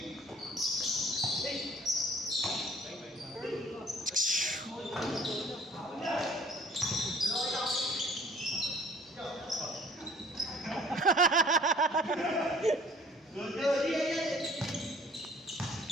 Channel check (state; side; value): normal; both; correlation 0.54